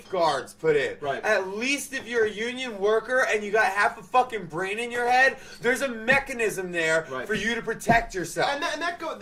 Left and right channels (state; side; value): identical; both; correlation 1.00